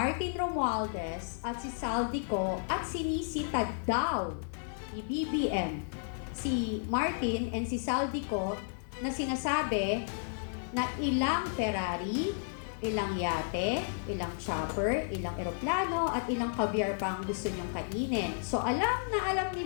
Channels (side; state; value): right; silent; digital silence